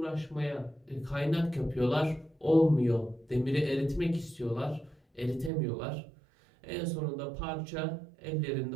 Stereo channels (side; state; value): left; drops out; at 5.5 s